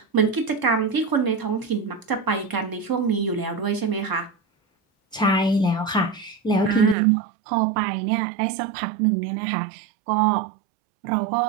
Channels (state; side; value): drops out; left; at 7.0 s